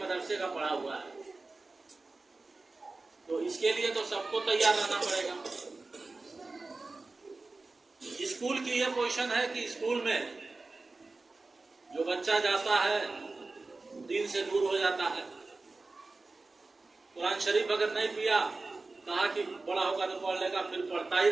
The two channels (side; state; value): left; quieter; 3.5 dB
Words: का पढ़ा हुआ है। तो इसके लिए तो सबको तैयार रहना पड़ेगा। स्कूल की यह पोजीशन है कि स्कूल में जो बच्चा जाता है दीन से दूर हो जाता है। कुरान शरीफ अगर नहीं पिया, कहा कि बड़ा होगा तो पढ़ लेगा, फिर पढ़ता ही